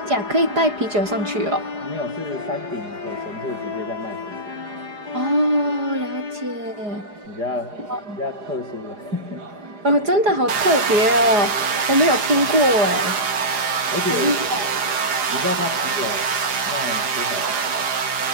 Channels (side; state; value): left; late; 4.9 ms